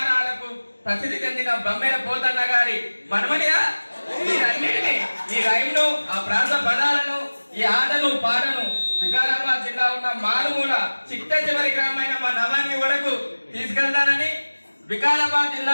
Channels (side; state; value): both; inverted; correlation -1.00